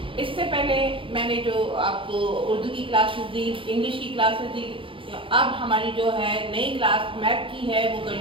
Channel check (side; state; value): left; late; 0.25 ms